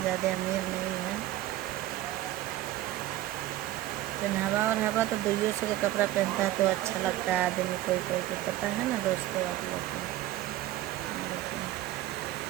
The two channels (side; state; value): left; quieter; 14.9 dB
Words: ज़्यादा अमीर नहीं है। पहनावा और हवा तो दुइयों से का कपड़ा पहनता है तो अच्छा लगता है आदमी, कोई कोई को पता है ना दोस्तों आप लोग को।